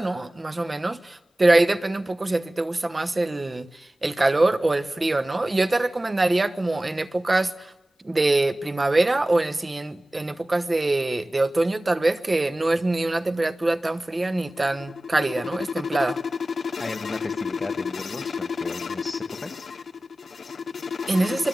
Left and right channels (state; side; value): normal; both; correlation 0.97